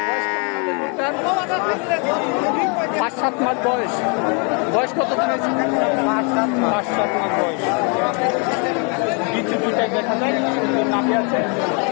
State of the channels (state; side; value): quieter; right; 35.7 dB